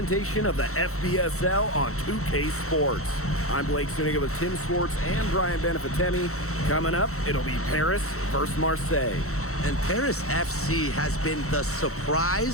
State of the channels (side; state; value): right; late; 0.64 ms